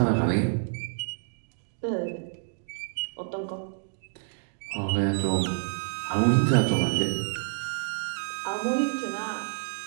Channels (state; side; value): silent; left; digital silence